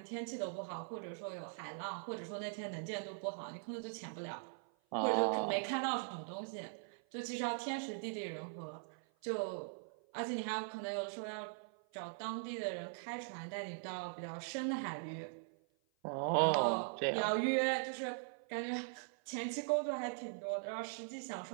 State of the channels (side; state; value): left; silent; 50 dB below the other